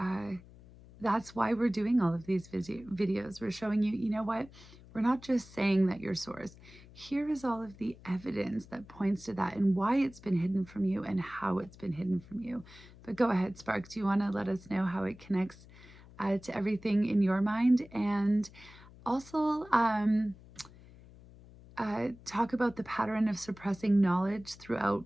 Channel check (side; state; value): left; noise; hum, 21 dB below the sound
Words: that's why we're doing all of these videos. We're showing you, you know what? We're not just saying that you're source. Here is all of the evidence that points to that and why it's been hidden from you and how it's been hidden from you. But go ahead, Spark. Do you want to let us know how it connects to everything in your mind? And also talk about the pattern of suppressing knowledge throughout